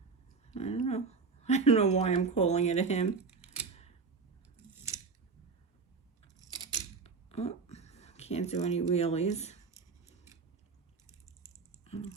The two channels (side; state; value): left; quieter; 4.8 dB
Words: I don't know why I'm calling it a him. Oh, can't do any wheelies. I'll